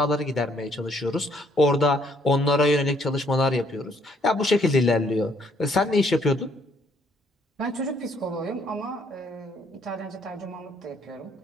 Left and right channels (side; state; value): both; normal; correlation 0.66